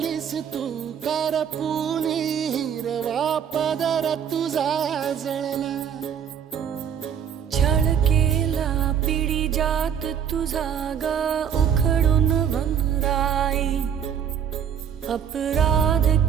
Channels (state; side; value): quieter; left; 8.2 dB